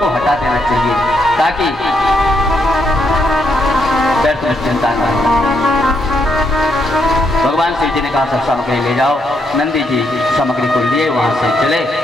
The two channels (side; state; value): both; normal; correlation 0.77